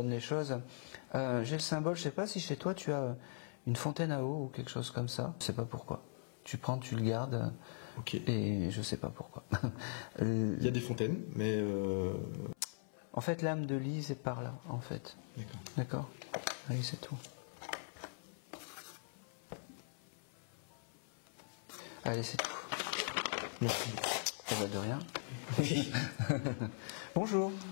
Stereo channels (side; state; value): right; silent; 51 dB below the other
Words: les choses. J'ai le symbole, je sais pas si chez toi tu as une fontaine à eau ou quelque chose comme ça, je sais pas pourquoi. Tu prends, tu le gardes, Ok. et je sais pas pourquoi. Il y a des fontaines, mais. En fait, l'âme de Lise est par là, en fait. D'accord. D'accord. Allez, c'est tout. Allez, c'est tout. Merci. Eh ben, de rien. Bonjour.